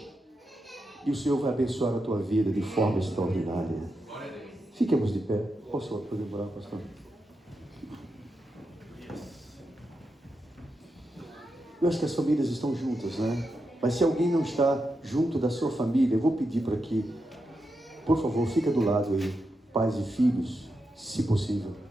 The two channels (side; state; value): both; normal; correlation 0.87